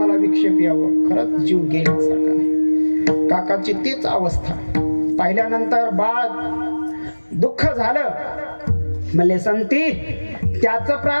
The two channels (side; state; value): both; inverted; correlation -1.00